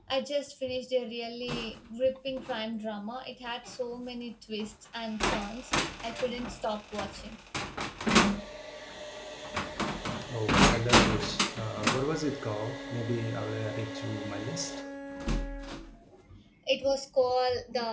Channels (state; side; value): identical; both; correlation 1.00